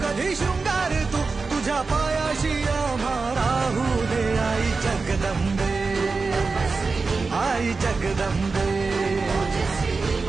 कधी शृंगार तू तुझ्या पायाशी आम्हा राहू दे आई जगदंबे आई जगदंबे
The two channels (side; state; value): left; quieter; 4.3 dB